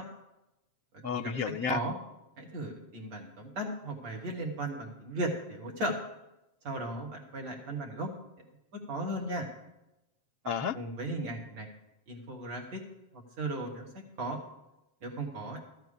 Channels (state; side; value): late; left; 7.5 ms